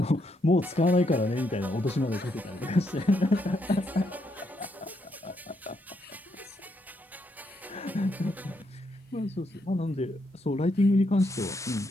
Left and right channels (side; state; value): both; normal; correlation 0.77